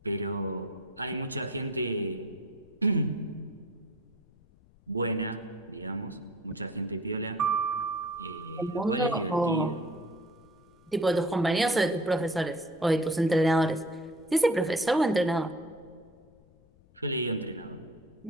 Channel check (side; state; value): left; noise; rumble, 28 dB below the sound